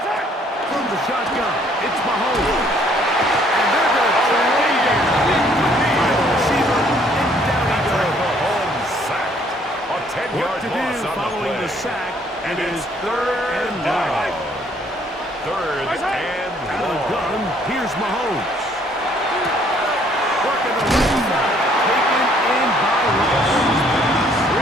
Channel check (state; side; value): normal; both; correlation 0.63